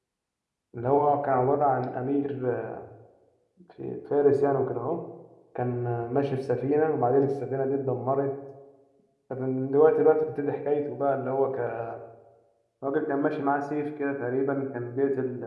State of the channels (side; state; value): both; identical; correlation 1.00